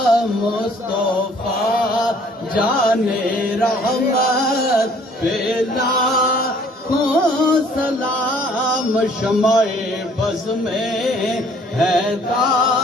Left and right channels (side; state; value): both; normal; correlation 0.58